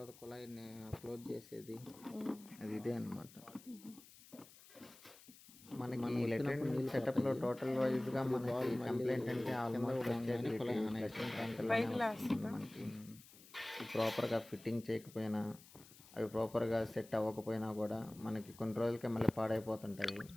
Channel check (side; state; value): left; noise; hiss, 21 dB below the sound